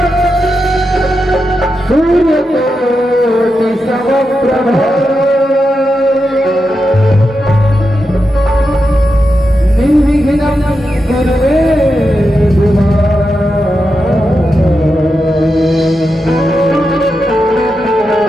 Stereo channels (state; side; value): normal; both; correlation 0.88